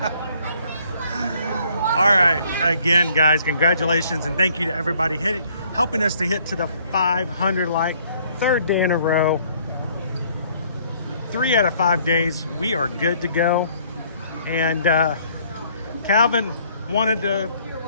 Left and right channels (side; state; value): both; inverted; correlation -0.62